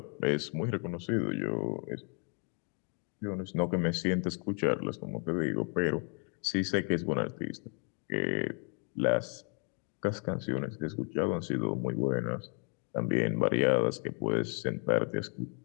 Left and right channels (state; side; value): quieter; right; 38.3 dB